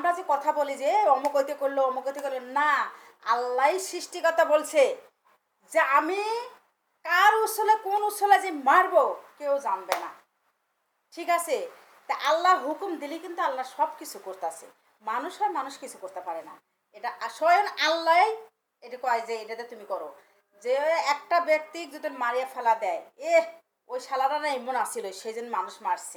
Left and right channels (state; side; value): identical; both; correlation 1.00